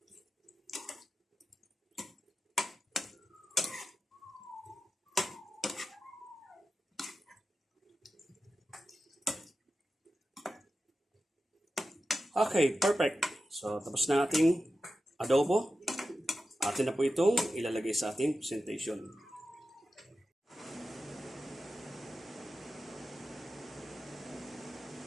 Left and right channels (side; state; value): both; normal; correlation 0.92